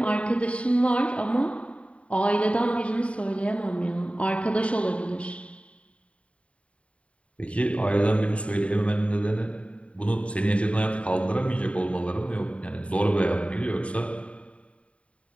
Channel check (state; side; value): late; right; 0.063 ms